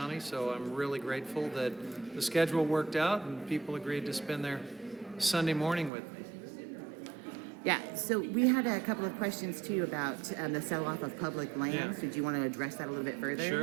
so I'm really grateful that the schedule worked out and people agreed to spend their Sunday morning with me. Yeah, so we had a couple of questions too about the sell-off of public lands. Did you want to address that a little bit further?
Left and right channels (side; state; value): left; drops out; at 5.9 s